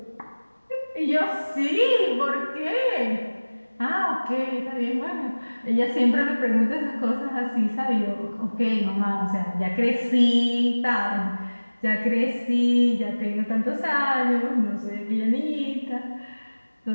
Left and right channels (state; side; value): inverted; both; correlation -1.00